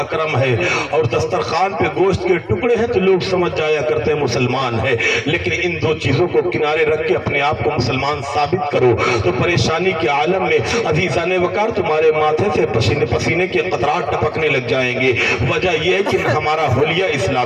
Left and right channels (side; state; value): both; identical; correlation 1.00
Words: ہے اور دسترخوان پہ گوشت کے ٹکڑے ہیں تو لوگ سمجھ جایا کرتے ہیں مسلمان ہے، لیکن ان دو چیزوں کو کنارے رکھ کے اپنے آپ کو مسلمان ثابت کرو تو پریشانی کے عالم میں عزیزان وقار تمہارے ماتھے سے پسینے کے قطرات ٹپکنے لگ جائیں گے۔ وجہ یہ ہے کہ نہ ہمارا حلیہ